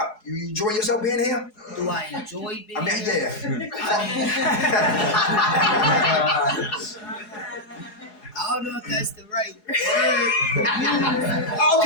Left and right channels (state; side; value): late; right; 4.8 ms